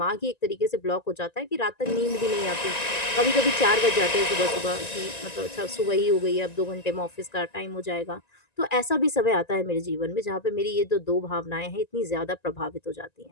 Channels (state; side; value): late; right; 1.9 ms